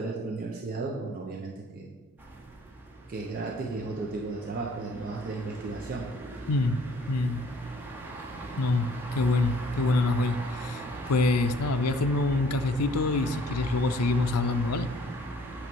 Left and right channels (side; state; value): both; normal; correlation 0.58